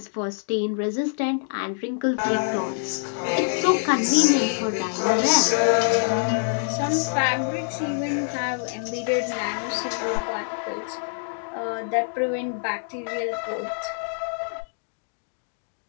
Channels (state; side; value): silent; right; digital silence